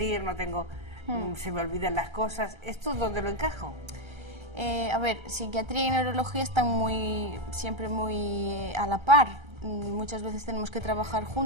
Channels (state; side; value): late; left; 1.3 ms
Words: no tengo, se me olvidan las cosas. ¿Esto dónde lo encajo? A ver, psiquiatría y neurología están siempre muy a la par. Muchas veces tenemos que trabajar